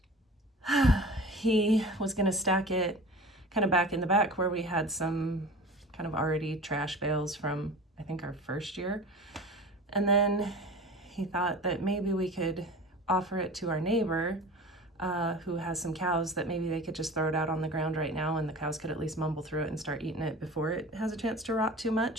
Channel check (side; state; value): both; normal; correlation 0.37